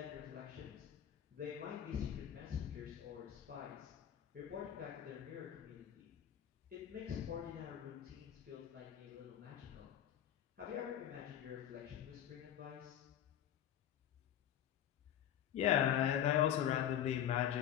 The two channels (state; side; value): quieter; right; 10.3 dB